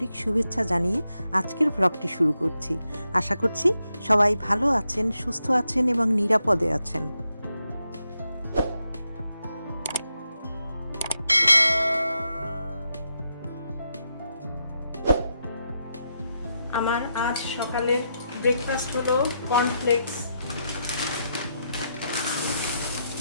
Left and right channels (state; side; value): inverted; both; correlation -0.83